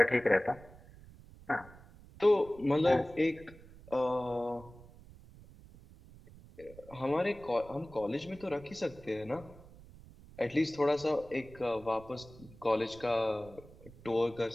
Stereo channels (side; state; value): right; noise; rumble, 20 dB below the sound